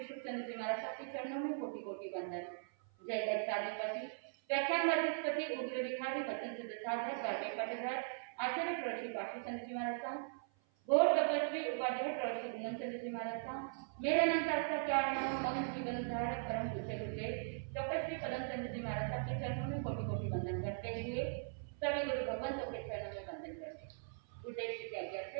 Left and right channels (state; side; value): silent; left; 51 dB below the other